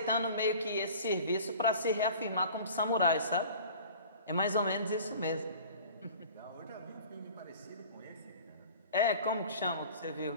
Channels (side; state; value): both; inverted; correlation -0.43